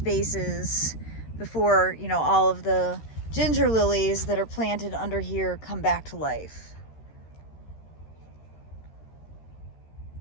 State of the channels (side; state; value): right; late; 13 ms